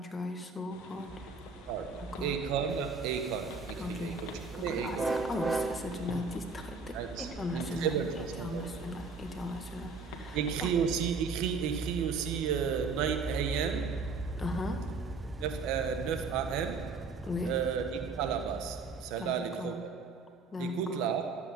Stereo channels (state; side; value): quieter; left; 4.3 dB